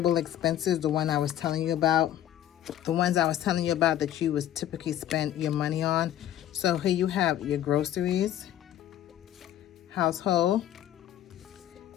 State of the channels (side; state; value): right; quieter; 11.7 dB